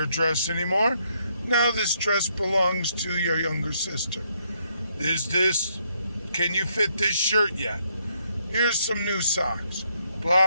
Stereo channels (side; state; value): both; inverted; correlation -0.73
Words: dress anymore. Now this dress belongs to your younger sister. Can you fit this shirt yet? Here's some new socks.